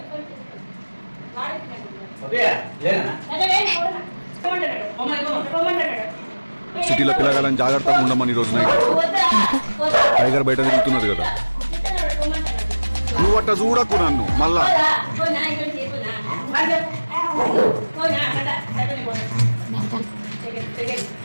సిటీలో పిల్లగాలని జాగ్రత్తగా ఉండమని ఈ రోజు నైట్ టైగర్ బయట తిరుగుతున్నది కదా. నువ్వు అట్ట చూడకు నన్ను మళ్ళా.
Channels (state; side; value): inverted; both; correlation -1.00